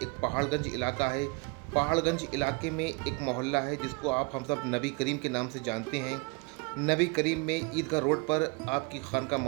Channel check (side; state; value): left; quieter; 29.2 dB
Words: पहाड़गंज इलाका है। पहाड़गंज इलाके में एक मोहल्ला है जिसको आप हम सब नबी करीम के नाम से जानते हैं। नबी करीम में ईदगाह रोड पर आपकी खानका